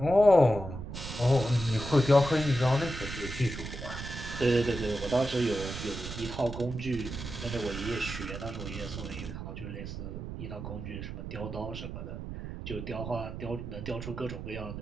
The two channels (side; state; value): right; noise; rumble, 8 dB below the sound